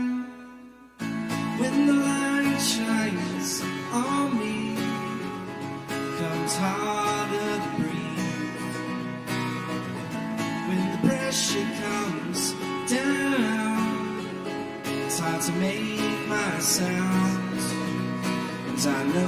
When the light shines on me, comes harder to breathe. When the pressure comes down, it's hard to make my sound. And I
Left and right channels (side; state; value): both; identical; correlation 1.00